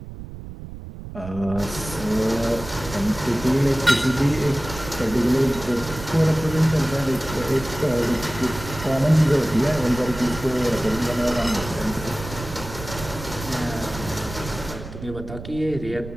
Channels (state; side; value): noise; right; rumble, 12 dB below the sound